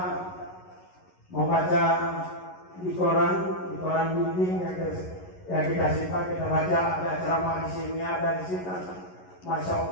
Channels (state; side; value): late; right; 11 ms